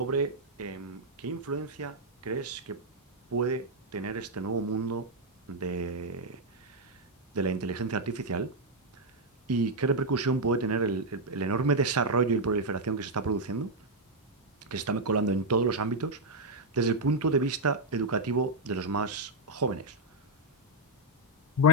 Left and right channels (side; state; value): both; normal; correlation -0.02